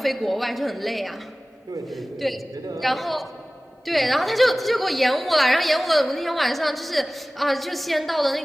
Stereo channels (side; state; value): both; normal; correlation 0.98